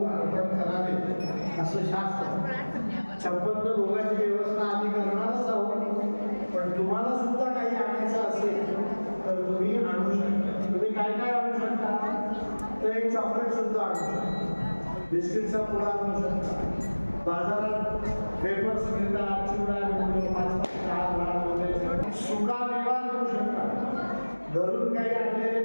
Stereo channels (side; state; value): both; inverted; correlation -1.00